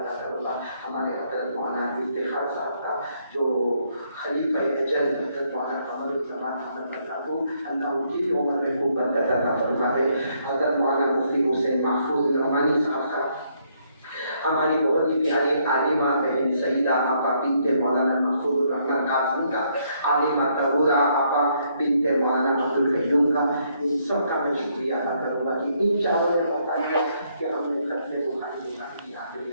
کروں گا ہمارے حضرت مولانا افتخار صاحب کا, جو خلیفہ اجل حضرت مولانا قمر الزمان احمد برکاتہ, اللہ ان کی بھی عمر میں خوب برکت عطا فرمائے. حضرت مولانا مفتی حسین محفوظ نعمانی صاحب کا, ہماری بہت ہی پیاری عالمہ بہن سیدہ آپا بنت مولانا محفوظ الرحمن قاسم کا, عالمہ طہورہ آپا بنت مولانا عبد القیوم کا, ان سب کا میں شکریہ ادا کروں گا کہ ان چاروں نے بتایا کہ ہم نے ختم بخاری کی آخری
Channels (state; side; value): inverted; both; correlation -0.72